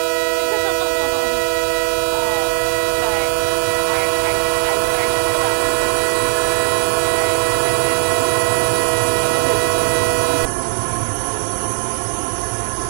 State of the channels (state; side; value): silent; left; 63 dB below the other